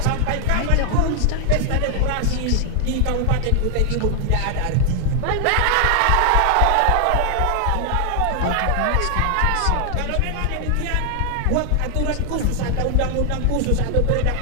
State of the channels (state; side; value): different; both; correlation 0.00